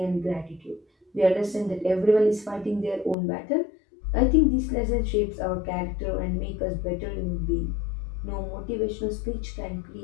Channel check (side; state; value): right; drops out; at 3.2 s